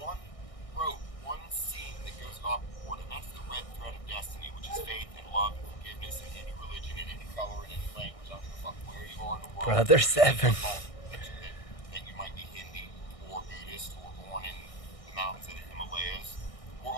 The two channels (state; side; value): late; right; 1.6 ms